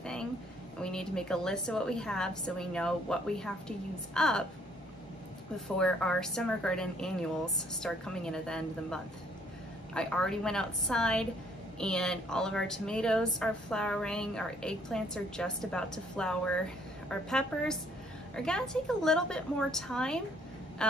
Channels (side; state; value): both; normal; correlation 0.64